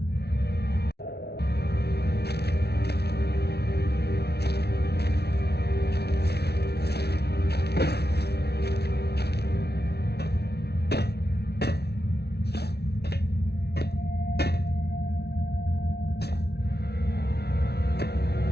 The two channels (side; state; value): right; late; 0.48 ms